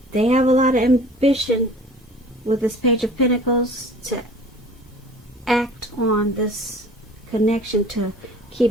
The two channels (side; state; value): both; normal; correlation 0.45